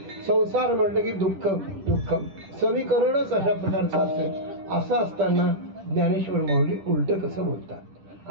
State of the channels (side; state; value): left; late; 10 ms